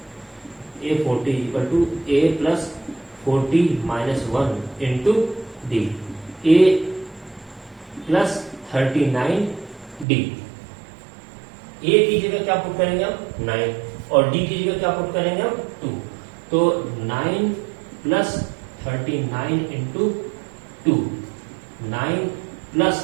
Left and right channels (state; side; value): drops out; left; at 10.1 s